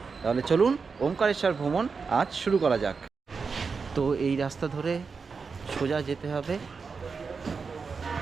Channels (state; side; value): quieter; left; 5.1 dB